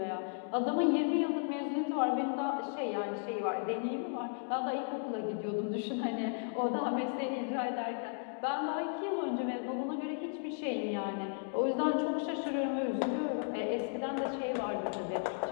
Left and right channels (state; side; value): silent; right; 55 dB below the other